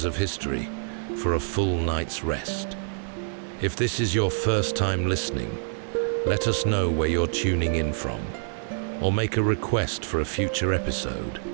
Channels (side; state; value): left; silent; digital silence